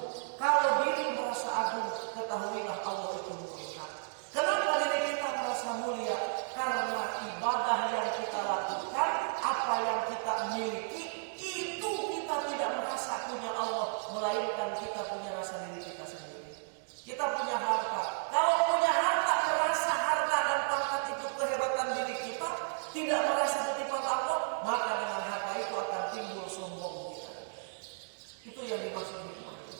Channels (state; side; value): silent; left; digital silence